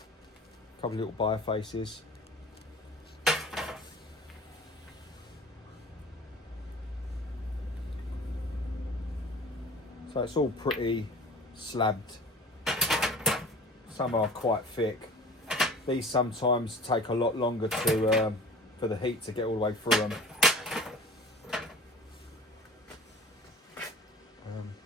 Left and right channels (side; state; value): both; normal; correlation 0.42